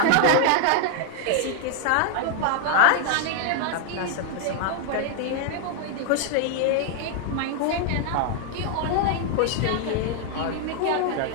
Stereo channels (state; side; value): different; both; correlation 0.00